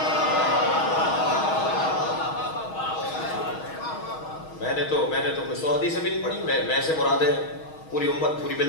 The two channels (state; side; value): late; right; 6.3 ms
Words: میں نے تو کوئی 100 حدیثیں بھی نہیں پڑھی. میں سے مراد ہے پوری امت، پوری